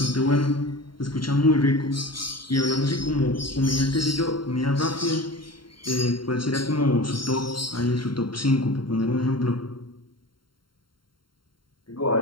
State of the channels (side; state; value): right; late; 0.73 ms